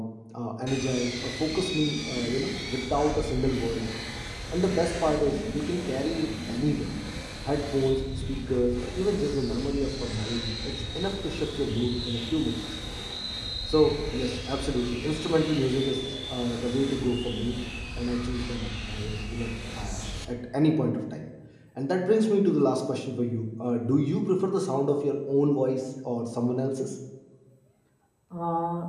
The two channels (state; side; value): identical; both; correlation 1.00